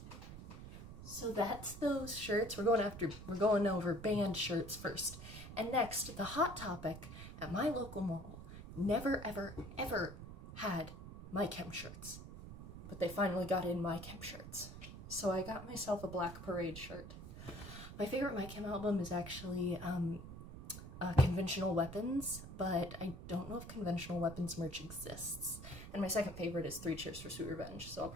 so that's those shirts. We're going over band shirts first. And next, the Hot Topic at my local mall never, ever, ever had My Chem shirts. But they finally got in My Chem shirts. So I got myself a Black Parade shirt. My favorite My Chem album is actually Conventional Weapons, but I don't know if Conventional Weapons merch exists. And my second favorite is 3 Cheers for Sweet Revenge, so I'll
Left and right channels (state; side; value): noise; right; rumble, 12 dB below the sound